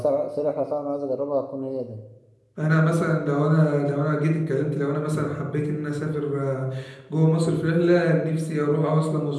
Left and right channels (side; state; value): both; identical; correlation 1.00